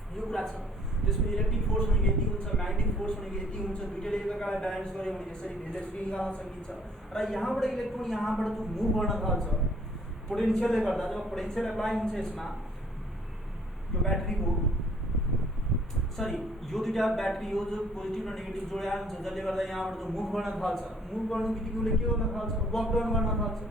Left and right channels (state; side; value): normal; both; correlation 0.60